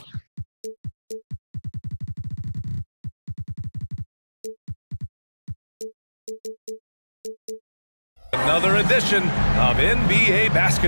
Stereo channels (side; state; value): both; inverted; correlation -1.00